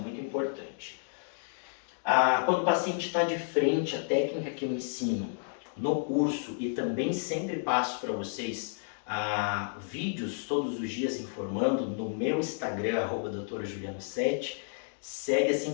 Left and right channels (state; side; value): silent; right; digital silence